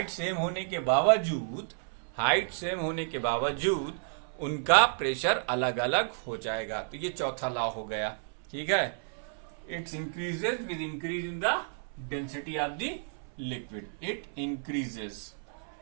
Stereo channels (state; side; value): silent; left; 57 dB below the other